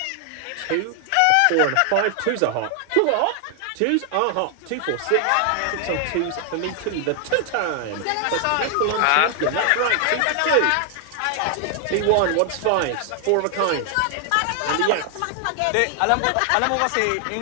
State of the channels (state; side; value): different; both; correlation 0.00